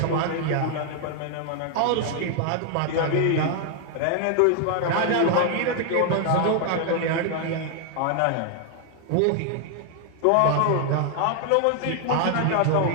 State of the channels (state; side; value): different; both; correlation 0.00